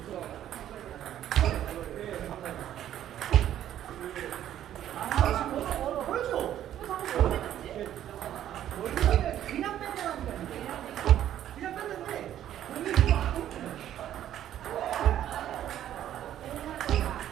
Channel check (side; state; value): left; quieter; 11.4 dB